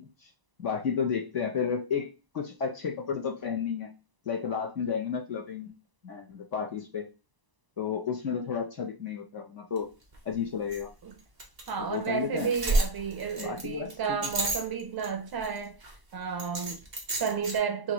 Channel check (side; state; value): left; late; 1.0 ms